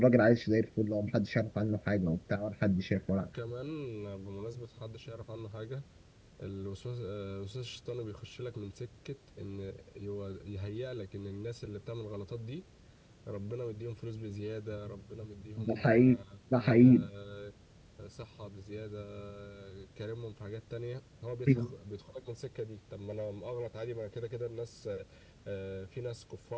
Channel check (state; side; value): identical; both; correlation 1.00